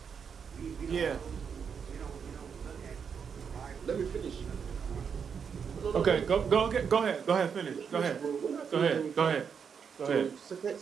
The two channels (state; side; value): quieter; left; 6.7 dB